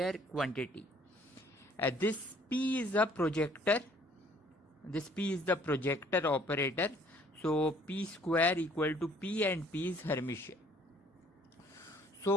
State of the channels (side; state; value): both; normal; correlation 0.58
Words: quantity. This p is a projector. This p is the projector operator. So p square equal to p and p is Hermitian.